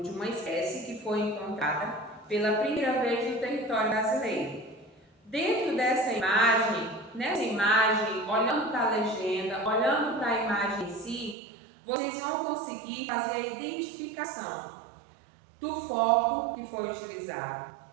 uma espécie que foi encontrada pela primeira vez no território brasileiro. Dentro dessa imagem, nessa imagem, olhando para a legenda, olhando para a imagem em si, vocês vão conseguir fazer a identificação do foco que foi utilizado,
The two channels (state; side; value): drops out; left; at 11.4 s